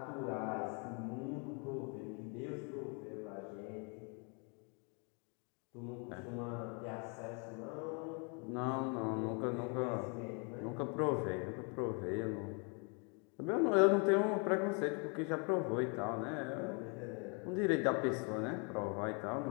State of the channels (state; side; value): quieter; right; 35.7 dB